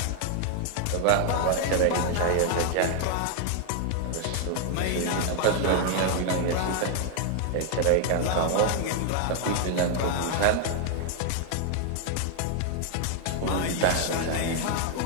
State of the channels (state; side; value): different; both; correlation 0.00